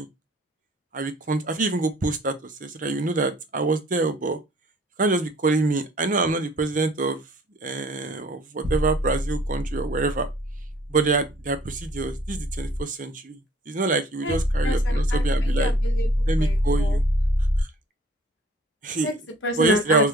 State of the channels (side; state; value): both; normal; correlation 0.53